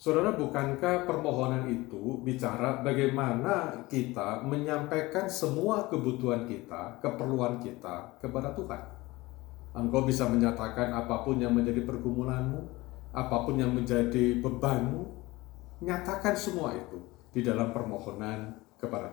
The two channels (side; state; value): right; quieter; 20.7 dB